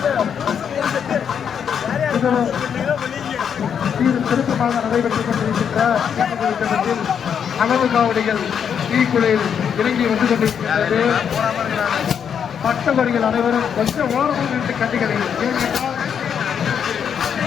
திருத்தமாக நடைபெற்றுக் கொண்டிருக்கின்ற அளவு காவடிகள் தீக்குழியில் இறங்கி வந்து கொண்டிருக்கிறது. பக்தவர்கள் அனைவரும் கொஞ்சம் ஓரமாக நின்று கண்டுகளில்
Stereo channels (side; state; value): right; quieter; 7.8 dB